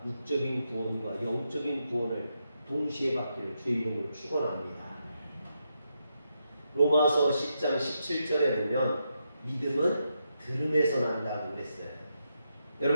육적인 구원과 영적인 구원을 동시에 받기를 주의 이름으로 축원합니다. 로마서 10장 17절에 보면 믿음은 들음에서 난다고 그랬어요.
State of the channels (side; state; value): both; inverted; correlation -0.83